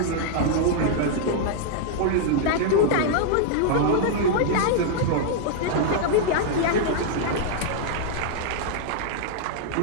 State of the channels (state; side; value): different; both; correlation -0.01